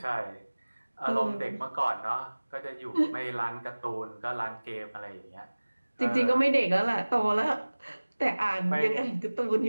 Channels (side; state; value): both; inverted; correlation -1.00